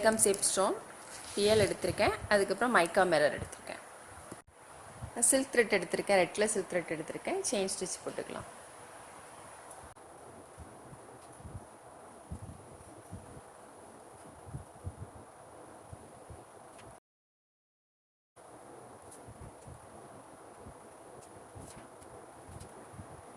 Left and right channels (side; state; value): both; identical; correlation 1.00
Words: shape stone, PL எடுத்திருக்கேன். அதுக்கப்புறம் மைக்கா மிரர் எடுத்திருக்கேன். சில்க் த்ரெட் எடுத்திருக்கேன், ரெட் கலர் சில்க் த்ரெட் எடுத்திருக்கேன். செயின் ஸ்டிச் போட்டுக்கலாம்.